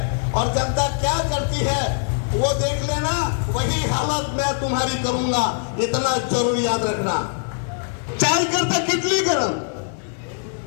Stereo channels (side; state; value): right; silent; digital silence